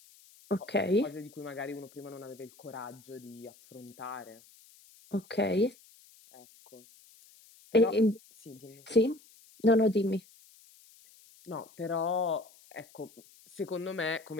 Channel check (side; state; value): left; noise; hiss, 25 dB below the sound